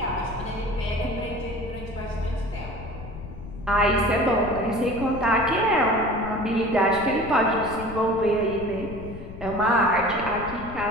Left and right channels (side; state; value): left; noise; rumble, 12 dB below the sound